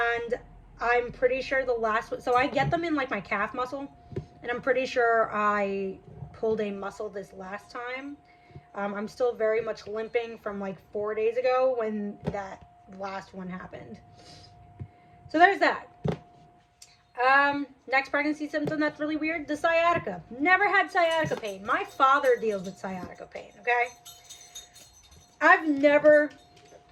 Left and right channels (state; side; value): identical; both; correlation 1.00